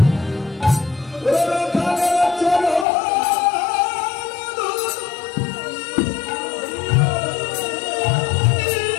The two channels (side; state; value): right; drops out; at 2.9 s